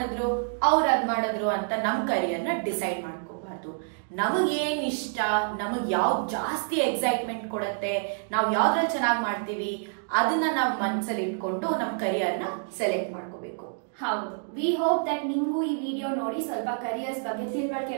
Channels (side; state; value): left; silent; digital silence